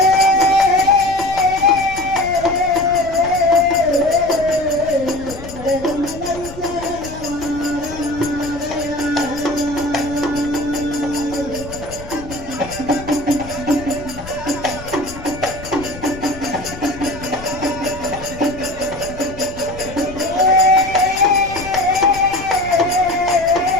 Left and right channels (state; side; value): noise; left; rumble, 14 dB below the sound